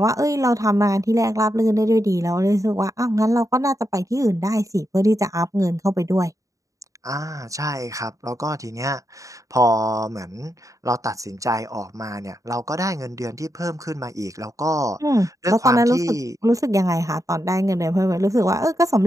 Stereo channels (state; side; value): late; left; 0.16 ms